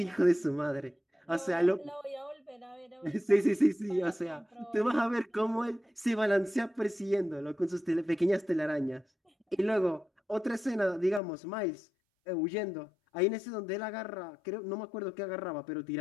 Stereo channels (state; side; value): drops out; right; at 11.2 s